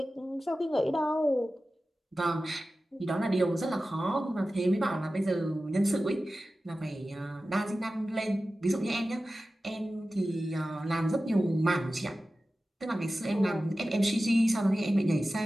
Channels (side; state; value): both; normal; correlation 0.95